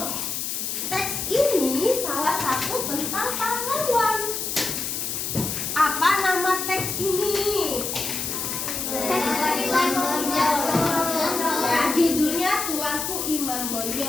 Teks ini salah satu tentang pahlawan. Apa nama teks ini? Ya, judulnya Tuanku Iman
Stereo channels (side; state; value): left; noise; hiss, 3 dB below the sound